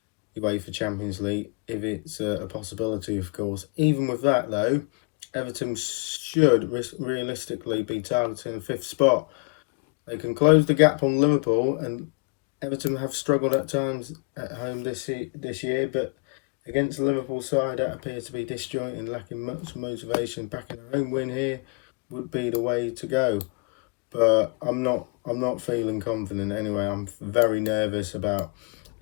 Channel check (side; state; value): right; quieter; 32.0 dB